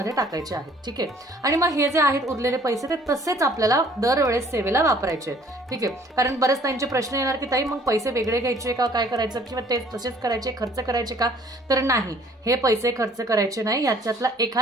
टाकायचे आहेत. ठीक आहे. आणि मग हे जे आहेत उरलेले पैसे ते तसेच आपल्याला दरवेळेस सेवेला वापरायचे आहेत. ठीक आहे. कारण बरेच त्यांचे प्रश्न येणार की ताई मग पैसे वेगळे घ्यायचे का, काय करायचं, किंवा ते तसेच करायचे, खर्च करायचे का, तर नाही, हे पैसे खर्च करायचे नाही. याच्यातला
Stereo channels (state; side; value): normal; both; correlation 0.56